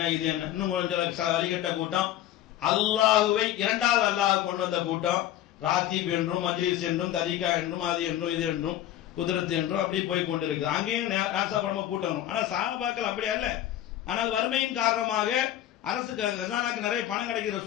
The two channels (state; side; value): quieter; right; 12.4 dB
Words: இது என்ன, இன்னும் கொஞ்சம் சில வழிகட்ட கூட்டம், அல்லாஹுவை இரண்டாவது அல்லாஹ் கொண்டு வந்த கூட்டம், ராத்தீப் என்றும் மஜ்லிஸ் என்றும் தரீகா என்றும் அது என்றும் இது என்றும் குதிரத்து என்றும் அப்படி போய் கொண்டு இருக்குது. அங்கேயும் நாசாபடமா கூட்டம். ஆனா சஹாபாக்கள் அப்படி அல்ல. ஆனால் வறுமையின் காரணமாக அரசுக்கு கஜானாக்கு நிறைய பணம் கிடைக்குது,